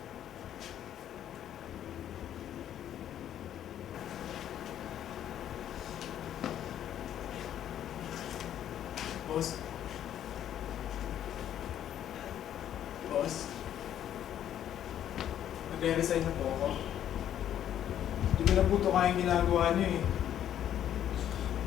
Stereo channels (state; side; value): quieter; right; 10.7 dB